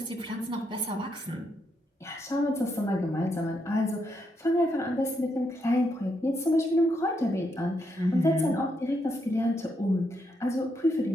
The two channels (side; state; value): both; normal; correlation 0.79